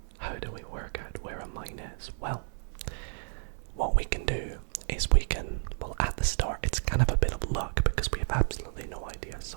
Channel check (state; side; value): silent; left; 57 dB below the other